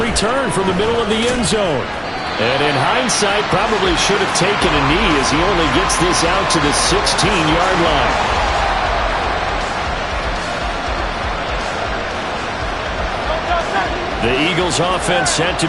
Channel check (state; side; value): identical; both; correlation 1.00